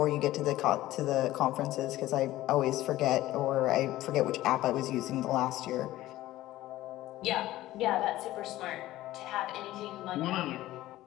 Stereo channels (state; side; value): quieter; right; 15.8 dB